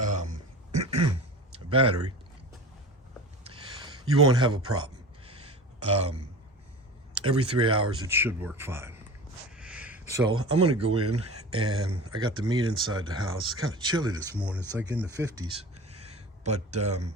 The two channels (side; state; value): both; normal; correlation 0.34